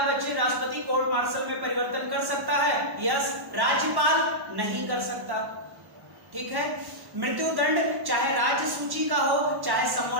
बच्चे राष्ट्रपति कोर्ट मार्शल में परिवर्तन कर सकता है, यस। राज्यपाल नहीं कर सकता। ठीक है। मृत्युदंड चाहे राज्य सूची का हो, चाहे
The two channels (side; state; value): left; late; 1.1 ms